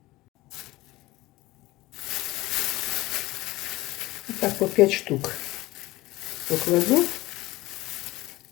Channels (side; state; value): right; quieter; 19.1 dB